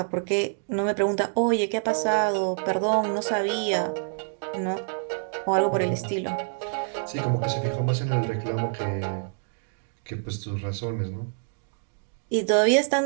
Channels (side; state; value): left; silent; digital silence